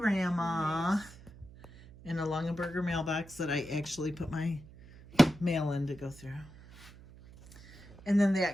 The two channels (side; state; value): right; noise; hum, 20 dB below the sound